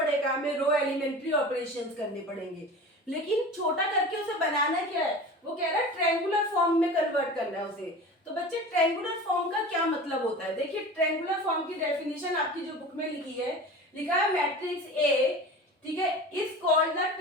हमें रो एलिमेंट्री ऑपरेशंस करने पड़ेंगे। लेकिन छोटा करके उसे बनाना क्या है, वो कह रहा है ट्रायंगुलर फॉर्म में कन्वर्ट करना है उसे। तो बच्चे ट्रायंगुलर फॉर्म का क्या मतलब होता है, देखिए ट्रायंगुलर फॉर्म की डेफिनेशन आपकी जो बुक में लिखी है, लिखा है मैट्रिक्स ए, ठीक है, is called the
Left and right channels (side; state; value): both; normal; correlation 0.35